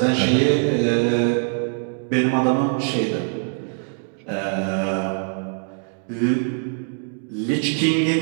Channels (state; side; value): silent; left; 57 dB below the other